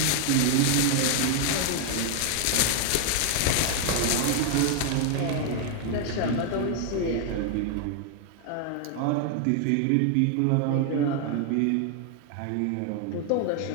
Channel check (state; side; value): different; both; correlation 0.00